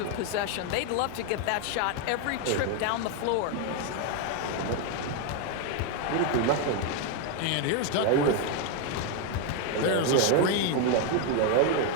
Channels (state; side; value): different; both; correlation 0.01